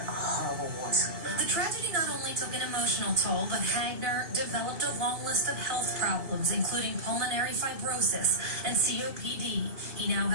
horrible war zone. The tragedy not only took an emotional toll, but Hagner developed a long list of health problems, including pulmonary fibrosis and COPD. He now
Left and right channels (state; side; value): late; left; 2.7 ms